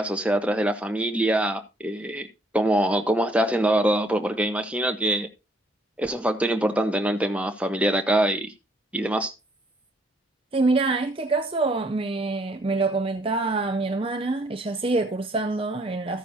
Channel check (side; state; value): both; normal; correlation 0.66